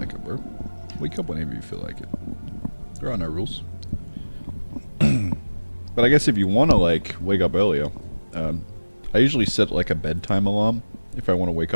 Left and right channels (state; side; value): inverted; both; correlation -1.00